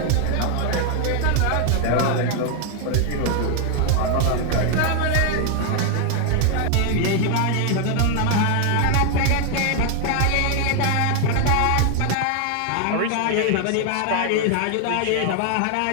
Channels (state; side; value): different; both; correlation 0.00